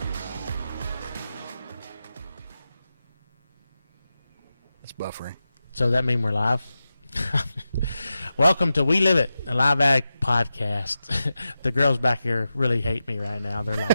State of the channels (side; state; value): both; inverted; correlation -0.91